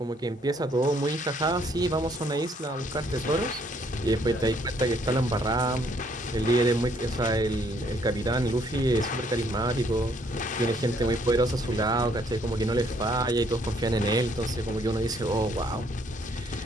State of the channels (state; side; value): normal; both; correlation 0.67